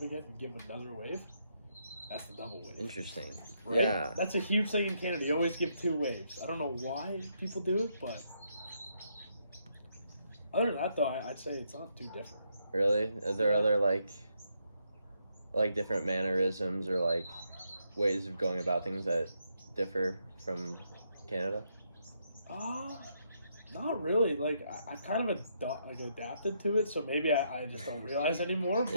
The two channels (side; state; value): both; inverted; correlation -0.77